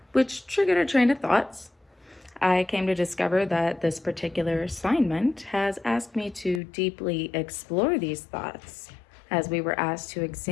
which triggered a train of thoughts. I came to discover that this particular assignment has asked me to deeply explore these thoughts as we were asked to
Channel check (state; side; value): drops out; right; at 6.6 s